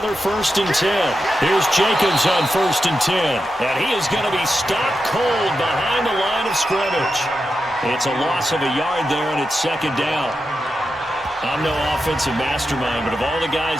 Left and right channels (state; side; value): normal; both; correlation 0.89